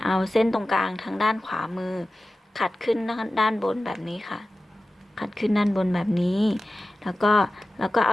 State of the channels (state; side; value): normal; both; correlation 0.95